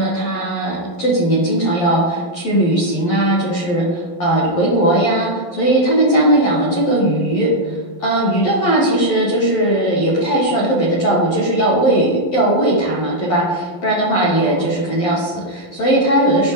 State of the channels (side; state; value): right; late; 11 ms